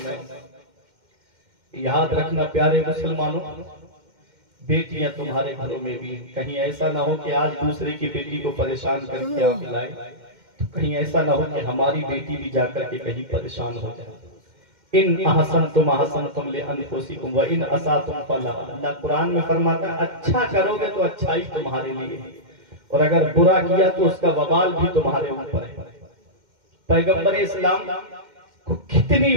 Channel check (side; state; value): left; late; 2.1 ms